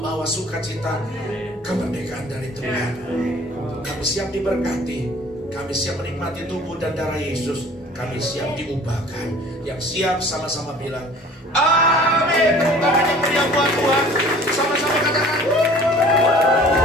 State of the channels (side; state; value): both; normal; correlation 0.49